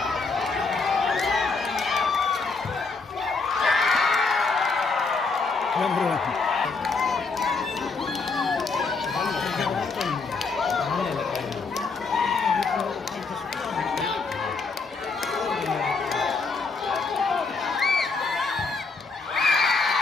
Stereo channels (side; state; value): right; quieter; 4.3 dB